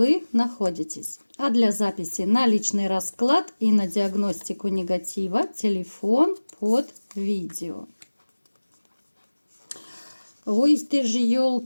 находитесь. А для записи на личный расклад и на диагностику негатива телефон под видео. Ой, ты же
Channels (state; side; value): inverted; both; correlation -1.00